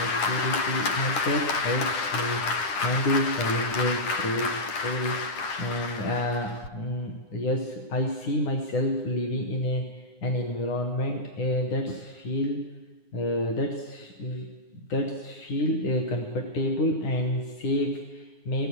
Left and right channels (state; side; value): late; right; 9.8 ms